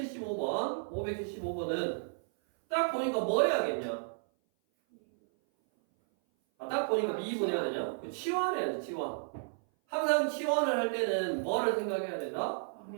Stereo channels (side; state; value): left; silent; 56 dB below the other